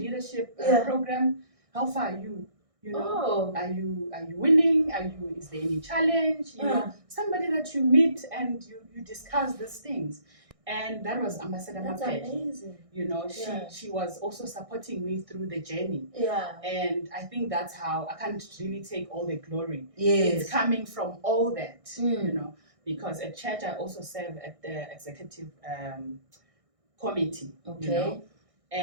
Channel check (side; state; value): left; late; 1.6 ms